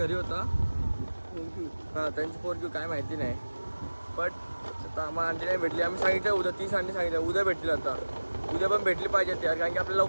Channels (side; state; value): both; inverted; correlation -1.00